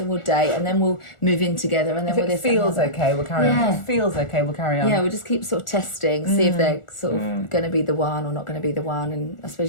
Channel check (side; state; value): right; late; 1.4 ms